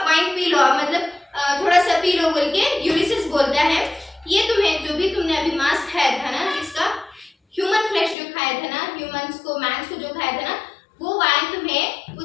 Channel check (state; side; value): drops out; right; at 8.2 s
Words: wine P low, मतलब थोड़ा सा P low बोल के यूलिसिस बोलता है, ये तुम्हें जो भी तुमने अभी मांस खाया था ना, जिसका ह्यूमन फ्लेश जो खाया था ना, ह्यूमंस को, मैंस को जो खाया था ना, वो वाइन तुम्हें